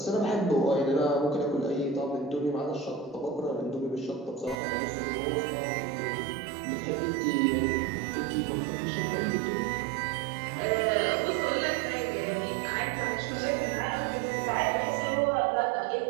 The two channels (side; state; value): left; drops out; at 4.5 s